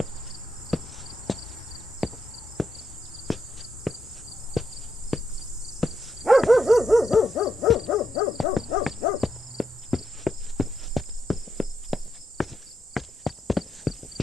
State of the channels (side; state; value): both; normal; correlation 0.81